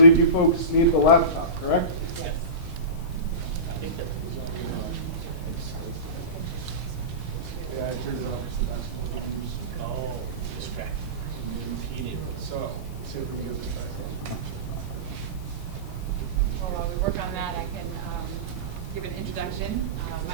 you folks need the laptop, correct? Yes. I think that was only Yeah, I turned it off because the basketball games. oh, distract. So, let's see if we can get this back on. Well, while we work on that, I can give an introduction.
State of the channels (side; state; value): left; late; 4.3 ms